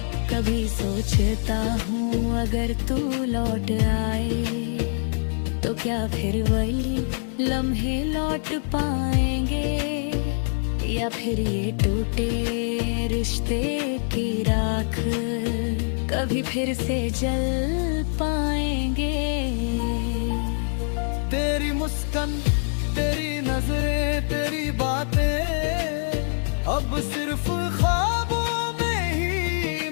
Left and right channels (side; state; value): right; silent; digital silence